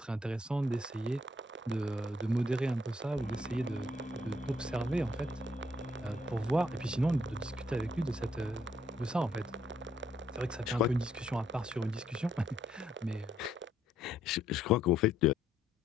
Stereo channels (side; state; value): both; normal; correlation 0.70